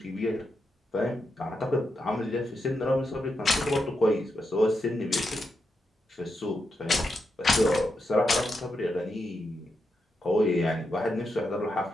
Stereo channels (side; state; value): both; normal; correlation 0.85